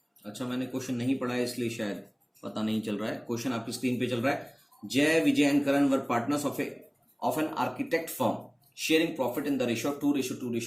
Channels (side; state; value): both; identical; correlation 1.00